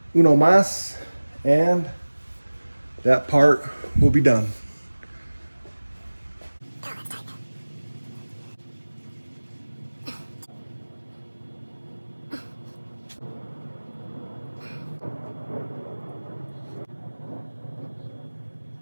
uno más, and that part will be done.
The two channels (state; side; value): inverted; both; correlation -1.00